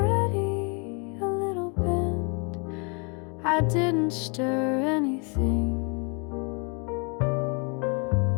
a little bent, I didn't stir anything,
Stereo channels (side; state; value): right; quieter; 34.8 dB